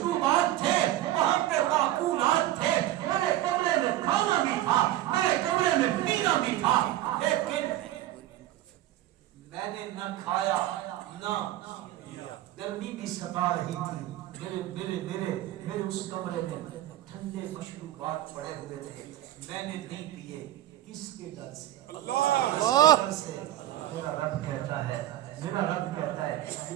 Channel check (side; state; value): left; quieter; 14.1 dB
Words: تھے، وہاں پہ معقولات تھے، میرے کمرے میں کھانا بھی تھا، میرے کمرے میں پینا بھی تھا، لیکن میں نے نہ کھایا نہ گرمی بھی ستا رہی تھی. میرے اس کمرے میں ٹھنڈے مشروبات پڑے ہوئے تھے، میں نے نہیں پیے. کس کے ڈر سے؟ اللہ ڈر سے. میرا رب کہتا ہے، میرا رب کہتا ہے